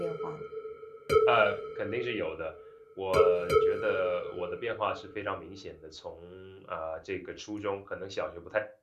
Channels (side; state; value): both; identical; correlation 1.00